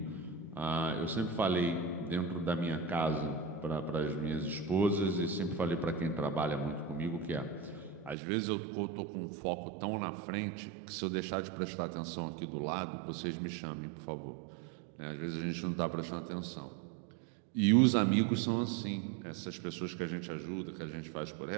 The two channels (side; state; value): left; drops out; at 8.2 s